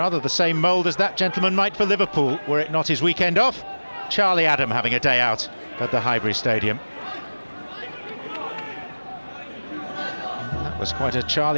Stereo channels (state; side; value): inverted; both; correlation -1.00